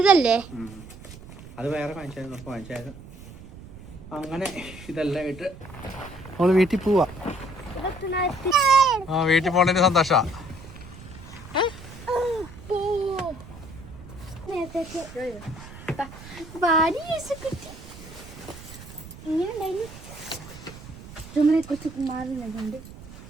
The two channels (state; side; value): noise; right; rumble, 16 dB below the sound